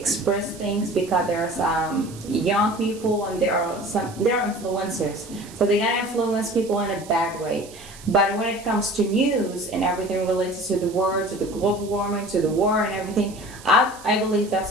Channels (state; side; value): noise; right; hiss, 19 dB below the sound